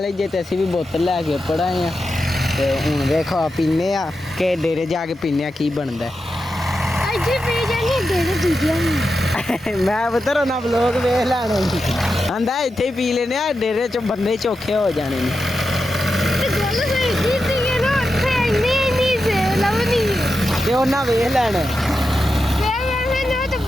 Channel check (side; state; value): both; normal; correlation 0.89